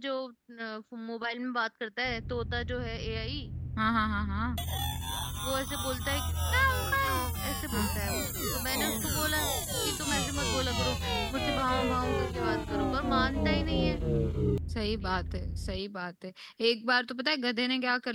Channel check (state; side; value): identical; both; correlation 1.00